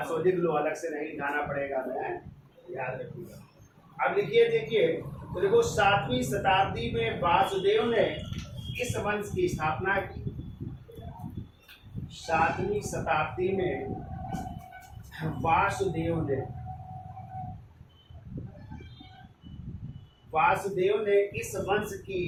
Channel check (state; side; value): identical; both; correlation 1.00